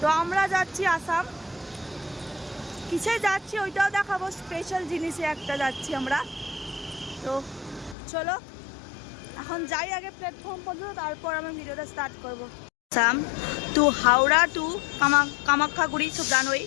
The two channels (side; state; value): right; drops out; at 8.0 s